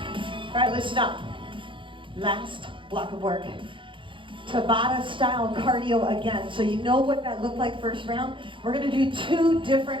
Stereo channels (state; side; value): late; left; 0.24 ms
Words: All right, listen up. Last block of work. Tabata style cardio again. So you know what that looked like first round? We're gonna do 2